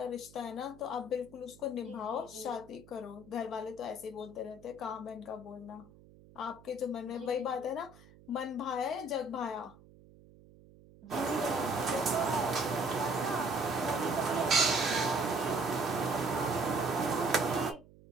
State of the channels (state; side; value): noise; right; hum, 23 dB below the sound